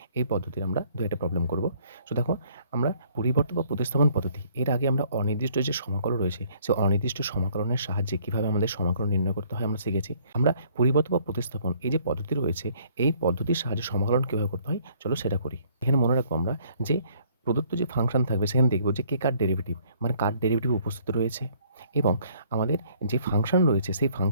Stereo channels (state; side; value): inverted; both; correlation -0.61